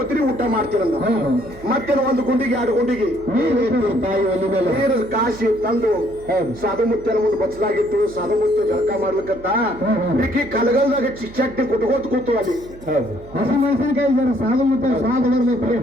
ಊಟ ಮಾಡ್ತೀರಂದ ಮತ್ತೇನು ಒಂದು ಗುಂಡಿಗೆ 2 ಗುಂಡಿಗೆ ತಾಯಿ ಒಲಿ ಮೇಲೆ ನೀರು ಕಾಸಿ ತಂದು ಸಾಧು ಮುತ್ಯನ ಮುಂದೆ ಬಚ್ಚಲಾಗಿತ್ತು ಸಾಧು ಮುತ್ಯ ಜಳಕ ಮಾಡ್ಲಿಕ್ಕಂತ ಈಕಿ ಕಲಗಲ್ದಾಗ ಚಟ್ನಿ ಕುಟ್ಕೋತ ಕೂತು ಅಲ್ಲಿ ಹಸಿ ಮೆಣಸಿನಕಾಯಿ ಜನ ಸಾಧು ಮತ್ತೆ ಸ್ವಾದ ಬರ್ಬೇಕು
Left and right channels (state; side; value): noise; right; hum, 19 dB below the sound